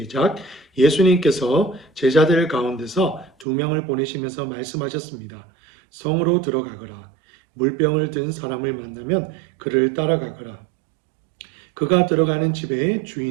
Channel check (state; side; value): drops out; left; at 3.5 s